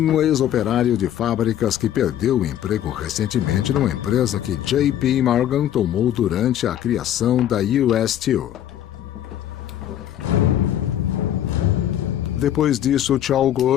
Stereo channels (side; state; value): right; quieter; 11.2 dB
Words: ex-operário de fábricas que perdeu o emprego recentemente numa empresa que J.P. Morgan tomou durante a criação da US Steel. Depois disso,